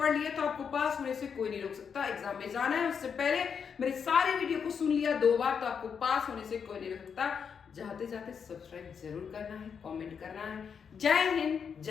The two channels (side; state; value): right; quieter; 6.7 dB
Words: लिए तो आपको पास होने से कोई नहीं रोक सकता। एग्जाम में जाना है उससे पहले मेरे सारे वीडियो को सुन लिया 2 बार तो आपको पास होने से कोई नहीं रोक सकता। जाते जाते सब्सक्राइब जरूर करना है, कमेंट करना है। जय हिंद,